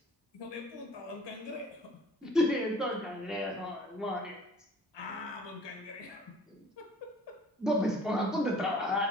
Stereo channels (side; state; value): both; normal; correlation 0.50